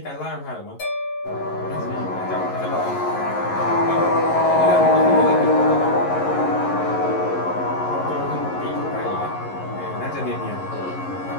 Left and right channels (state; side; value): late; right; 11 ms